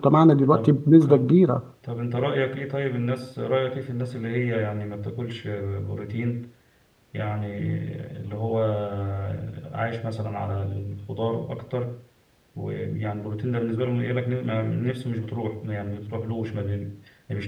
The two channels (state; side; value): identical; both; correlation 1.00